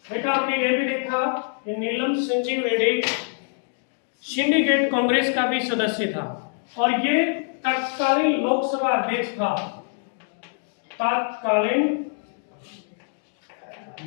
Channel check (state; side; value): silent; right; 62 dB below the other